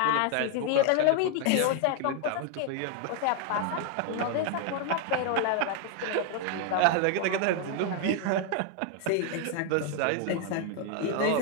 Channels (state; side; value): different; both; correlation 0.00